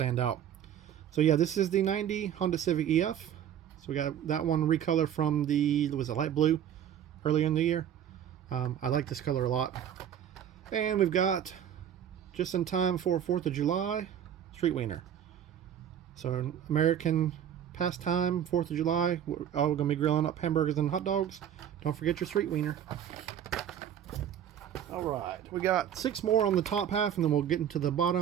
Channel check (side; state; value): left; quieter; 9.7 dB